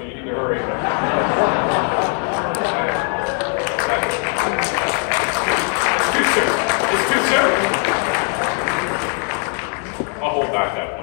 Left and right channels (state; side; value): quieter; right; 39.9 dB